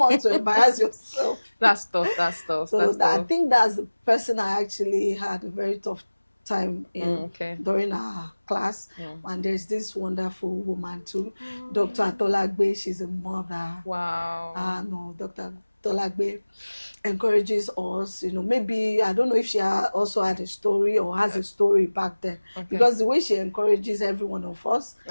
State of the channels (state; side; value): inverted; both; correlation -1.00